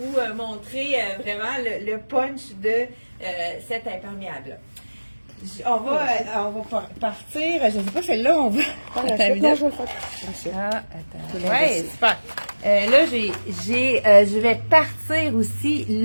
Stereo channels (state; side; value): inverted; both; correlation -1.00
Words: montrer vraiment le punch de cet imperméable-là. On va partir. Je ne sais pas, celle-là, on va. Non, je vais le faire. Attends. Ouais, super. Là, je vais partir aussi